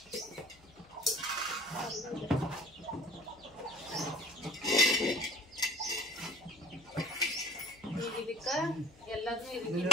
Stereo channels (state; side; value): noise; left; hum, 25 dB below the sound